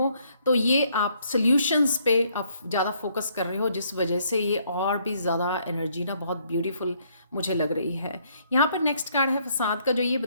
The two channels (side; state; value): both; inverted; correlation -0.69